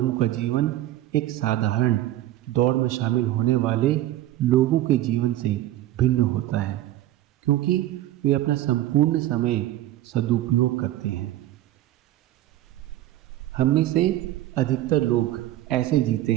का जीवन एक साधारण दौड़ में शामिल होने वाले लोगों के जीवन से भिन्न होता है, क्योंकि वे अपना संपूर्ण समय सदुपयोग करते हैं। हम में से अधिकतर लोग ऐसे जीते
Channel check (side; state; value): left; quieter; 14.4 dB